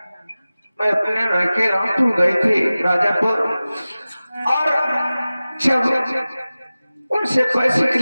मैं अपने लड़के रामपुर गई थी राजापुर, और जब उनसे पैसे के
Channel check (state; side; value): inverted; both; correlation -0.97